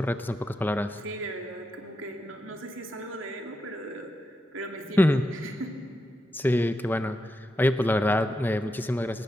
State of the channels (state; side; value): normal; both; correlation 0.85